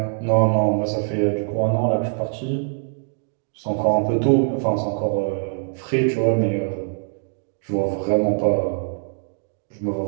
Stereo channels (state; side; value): silent; left; digital silence